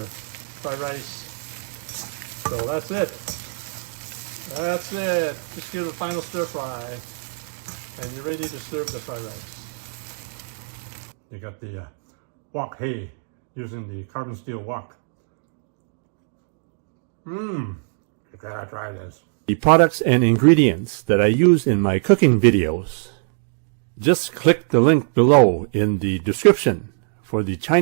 rice. So that's it. That's it. Just give it a final stir fry, and you're ready to serve the fried rice. You got the Wok Hei using the carbon steel wok. You gotta try this. The products and ingredients that I use in my cooking videos, just click the link below in the description for the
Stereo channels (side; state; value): left; silent; digital silence